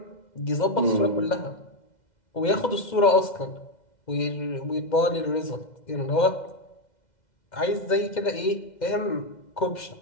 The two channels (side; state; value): right; late; 2.0 ms